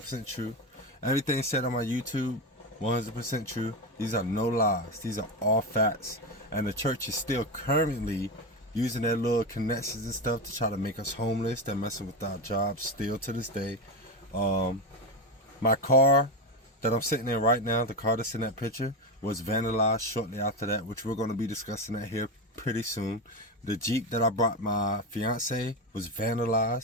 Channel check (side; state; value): both; normal; correlation 0.16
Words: true. Everything said on my YouTube, 100% true. These are no lies. These are all facts. And the church is still currently using their little connections and stuff to try to make us homeless. They're messing with our jobs still to this day. My car that I'm sitting in right now, the car that's in that picture, was vandalized shortly after that, which we're going to be discussing that here pretty soon. The Jeep that I brought my fiance was